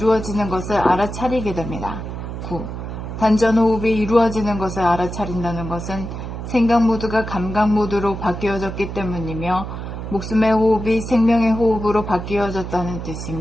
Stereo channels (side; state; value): right; noise; hum, 7 dB below the sound